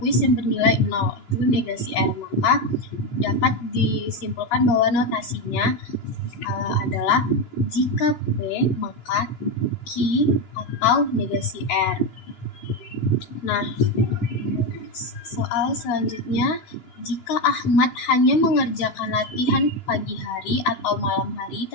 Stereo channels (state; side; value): late; right; 13 ms